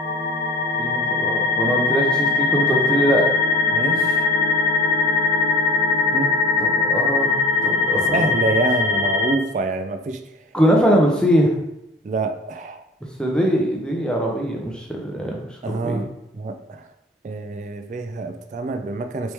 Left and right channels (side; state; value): both; normal; correlation 0.42